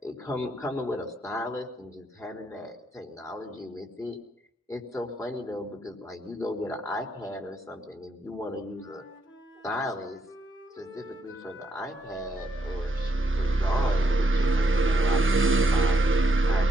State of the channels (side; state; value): both; normal; correlation 0.77